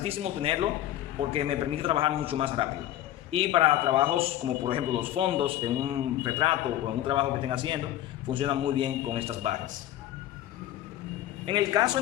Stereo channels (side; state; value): right; quieter; 13.2 dB